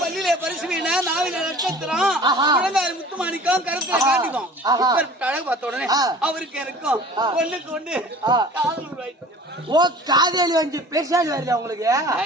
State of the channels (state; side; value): normal; both; correlation 0.44